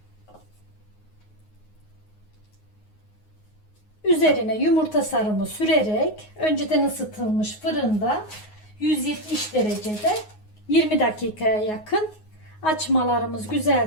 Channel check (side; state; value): right; late; 9.5 ms